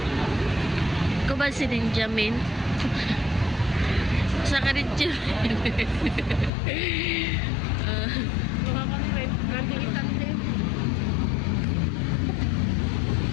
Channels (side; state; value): right; drops out; at 6.5 s